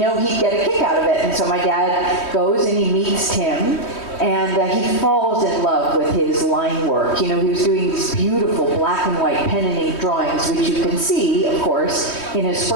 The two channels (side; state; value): right; late; 3.2 ms